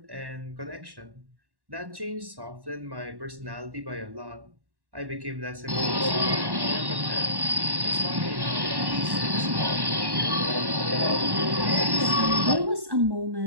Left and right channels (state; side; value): late; left; 1.1 ms